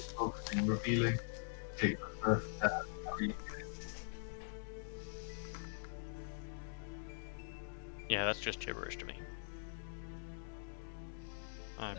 focusing, revealing. Take the first step. Yeah, that's just gibberish to me. I'm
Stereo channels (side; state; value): right; silent; digital silence